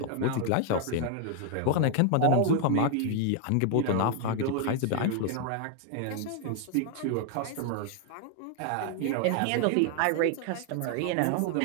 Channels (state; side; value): different; both; correlation 0.00